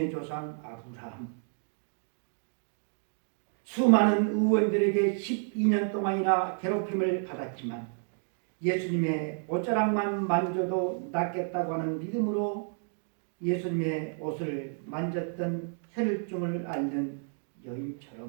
조상 아브라함, 수많은 의원들에게 12년 동안이나 괴롭힘을 받았지만 예수님의 옷자락만 만져도 낫겠다고 하는 믿음으로 예수님의 옷을 만졌던 혈혈증을 앓는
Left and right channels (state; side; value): silent; left; 57 dB below the other